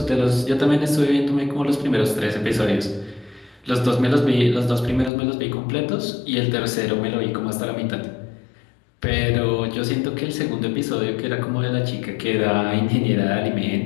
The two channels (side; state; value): right; drops out; at 5.1 s